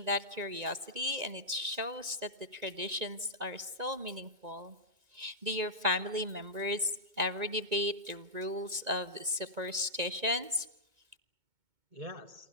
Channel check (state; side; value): late; left; 2.2 ms